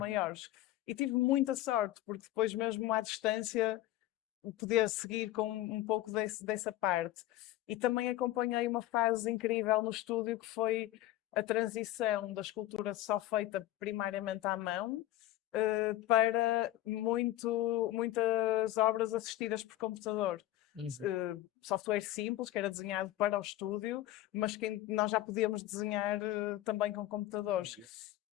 E tive muita sorte, porque depois mesmo à distância podia seguir com um pouco dessa parte. E também acompanhei uma fase incrível no estúdio, que foi a transição da escultura só feita primariamente à mão, para muitas obras assistidas por computador. Software simples, que era desenhado para o estúdio, mas que nós já podíamos desenhar também com computadores.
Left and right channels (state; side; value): quieter; right; 14.7 dB